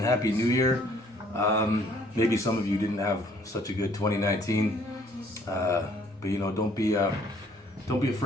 happy new year. Maybe some of you didn't have such a good 2019, but you know, don't be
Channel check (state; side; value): normal; both; correlation 0.61